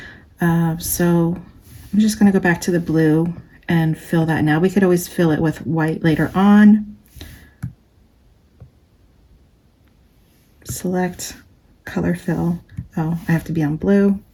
So I'm just going to go back to the blue and fill that now. We could always fill it with white later on. Select color fill. Oh, I have to be on blue.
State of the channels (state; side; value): identical; both; correlation 1.00